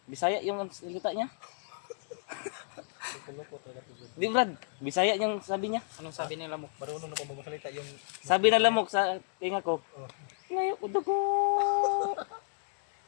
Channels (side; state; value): right; silent; digital silence